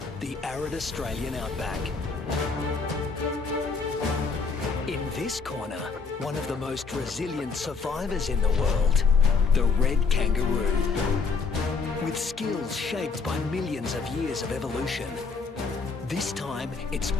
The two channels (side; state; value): right; quieter; 4.8 dB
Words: the arid Australian outback. In this corner, one of the most resilient survivors in the world, the red kangaroo. With skills shaped by millions of years of evolution, this time it's